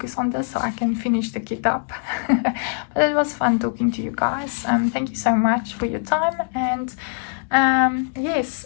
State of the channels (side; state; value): right; silent; 61 dB below the other